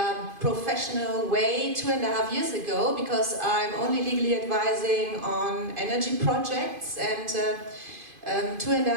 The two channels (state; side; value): late; left; 2.5 ms